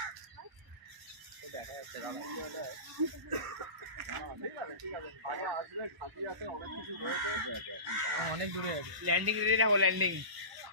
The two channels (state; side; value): late; left; 1.0 ms